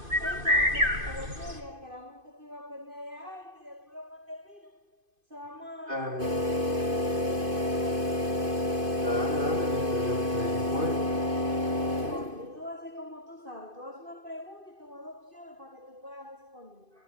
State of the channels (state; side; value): late; left; 2.5 ms